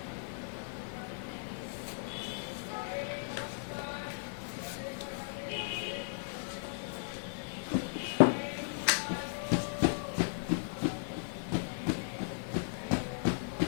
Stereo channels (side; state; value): right; silent; digital silence